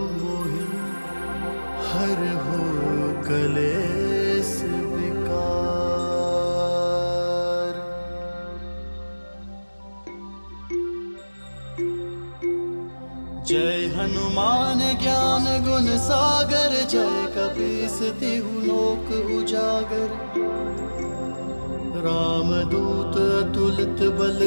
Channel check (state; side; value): inverted; both; correlation -1.00